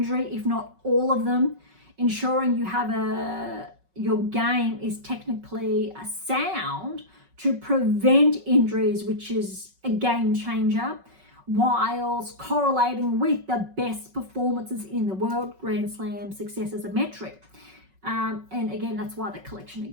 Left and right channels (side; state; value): left; late; 5.3 ms